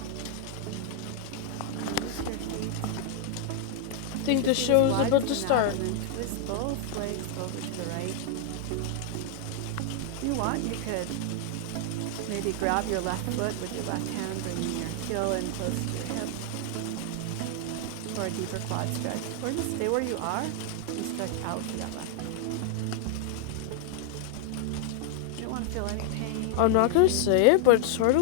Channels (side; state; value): both; different; correlation 0.00